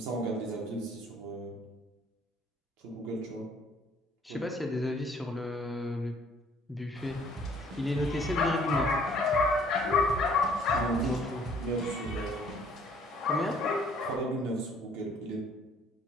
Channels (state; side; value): normal; both; correlation 0.59